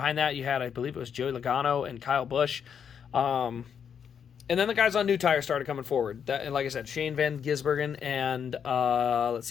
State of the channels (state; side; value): quieter; right; 7.6 dB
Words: that you had, I believe it was Joey Logano and Kyle Busch. And then the guys on new tires started coming forward. And like I said, Shane Van Gisbergen and,